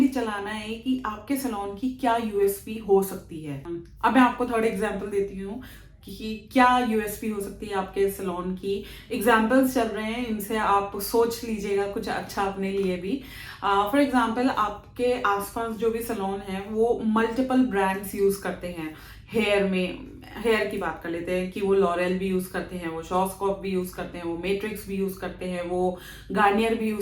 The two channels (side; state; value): both; identical; correlation 1.00